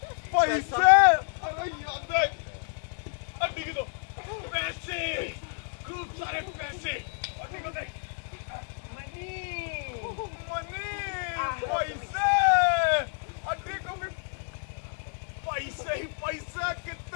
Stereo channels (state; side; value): silent; right; 58 dB below the other